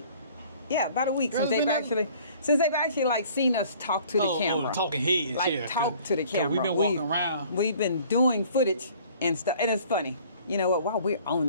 Yeah, about a week since they've actually like seen us talk to the camera. Talking heads. Like talk to the camera. We've been walking around. We've been doing footage and stuff, and it's funny. You know what? While we're on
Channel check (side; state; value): both; inverted; correlation -0.53